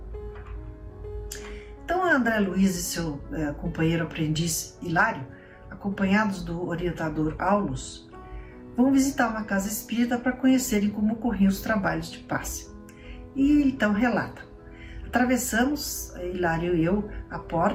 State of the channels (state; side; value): identical; both; correlation 1.00